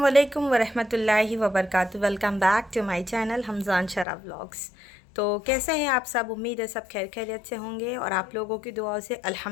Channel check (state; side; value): drops out; right; at 4.0 s